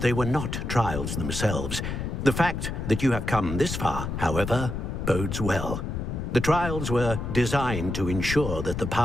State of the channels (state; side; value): noise; left; rumble, 4 dB below the sound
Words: they were not trials themselves. The fact that you have come this far, however, bodes well. The trials were designed to ensure that the